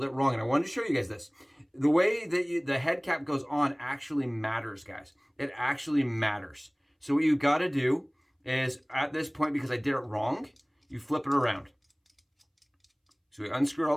it wrong, and I wanted to show you guys this. The way that the head cap goes on actually matters, guys. It actually matters. So what you got to do is, at this point, because I did it wrong, you flip it around. So we unscrew it all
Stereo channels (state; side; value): identical; both; correlation 1.00